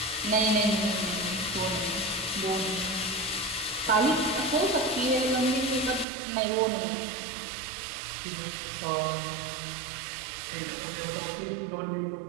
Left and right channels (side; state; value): left; drops out; at 6.1 s